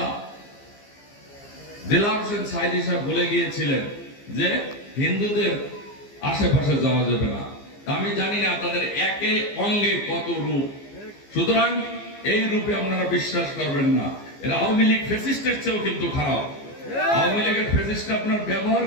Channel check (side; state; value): right; late; 15 ms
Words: দেলাওয়ার হোসেন সাঈদী সাহেব বলে গিয়েছিলেন যে হিন্দুদের আশেপাশে যাওয়া যাবে না। আমি জানি না তাদের একে অঙ্গে কত রূপ, সুতরাং এই রূপে আপনারা বিশ্বাস করবেন না। এরা আওয়ামী লীগ ফ্যাসিস্টের চেয়েও কিন্তু খারাপ। আওয়ামী লীগের ফ্যাসিস্ট আপনার ব্যবহার